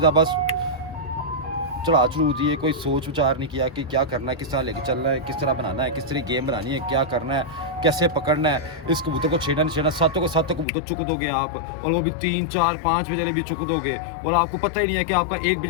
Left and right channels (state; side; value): drops out; right; at 10.7 s